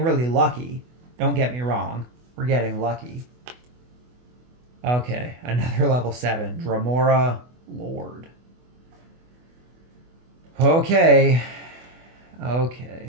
really lucky. Don't get me wrong. We're getting lucky. Okay, another level 7. Dramora Lord. Okay.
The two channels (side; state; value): left; late; 24 ms